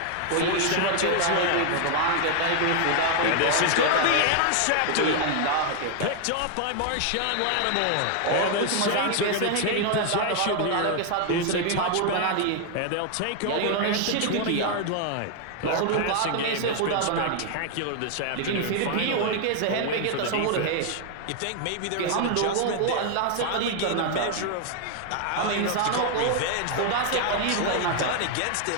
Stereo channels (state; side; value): different; both; correlation 0.00